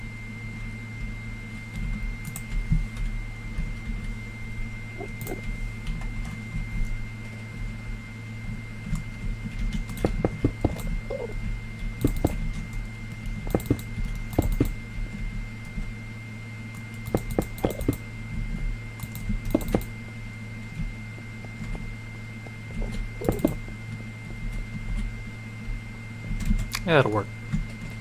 Yeah, that'll work.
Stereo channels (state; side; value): identical; both; correlation 1.00